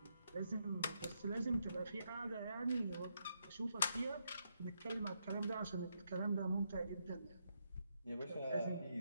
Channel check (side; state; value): both; inverted; correlation -0.79